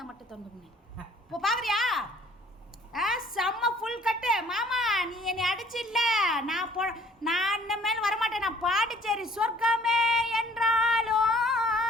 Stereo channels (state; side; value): normal; both; correlation 0.57